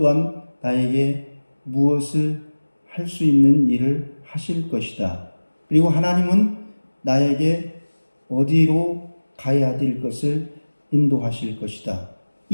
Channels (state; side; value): inverted; both; correlation -1.00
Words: 나에게 무엇을 할 수 있는 일을 하실 것이다. 그리고 하나님은 나에게 어디로 가야 될 것을 인도하실 것이다.